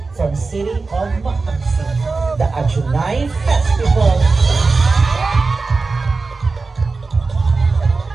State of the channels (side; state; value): left; quieter; 4.0 dB